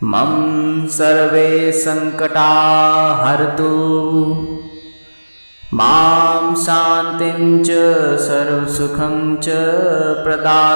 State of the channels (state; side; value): inverted; both; correlation -1.00